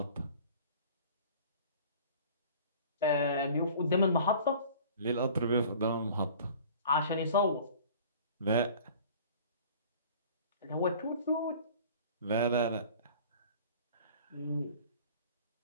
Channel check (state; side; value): inverted; both; correlation -0.46